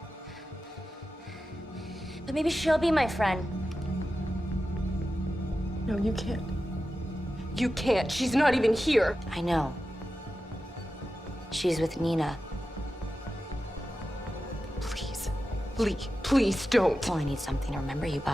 But maybe she'll be my friend. No, you can't. You can't. She's not even here. I know. She's with Nina. Please. Lee, please don't. Well, I need something to remember you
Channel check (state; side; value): normal; both; correlation 0.92